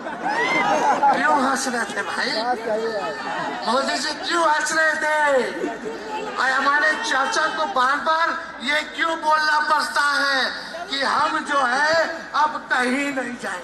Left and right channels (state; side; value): identical; both; correlation 1.00